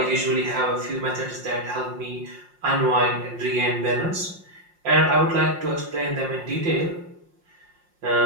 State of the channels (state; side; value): late; left; 5.6 ms